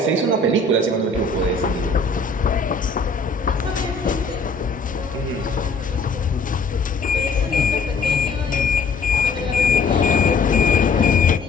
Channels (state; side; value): quieter; right; 3.9 dB